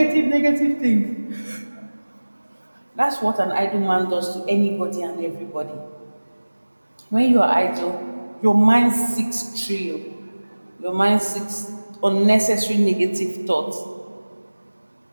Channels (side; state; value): both; inverted; correlation -1.00